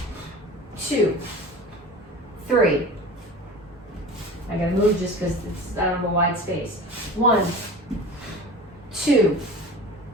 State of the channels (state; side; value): normal; both; correlation 0.36